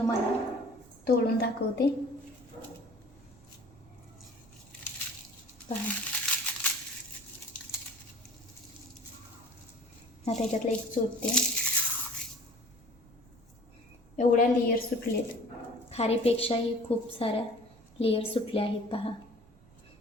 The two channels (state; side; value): noise; right; rumble, 25 dB below the sound